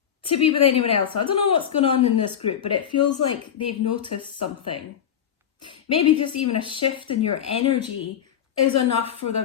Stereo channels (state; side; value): quieter; right; 9.0 dB